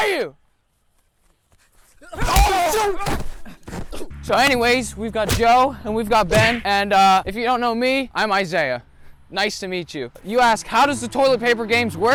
you? So anyways, we've got Joe and we've got Ben, and if you don't know me, I'm Isaiah. Nice to meet you. You ask, how does the toilet paper games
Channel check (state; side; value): identical; both; correlation 1.00